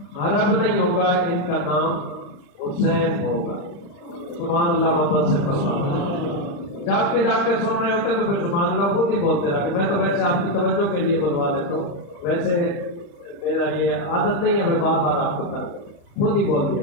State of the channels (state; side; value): late; right; 35 ms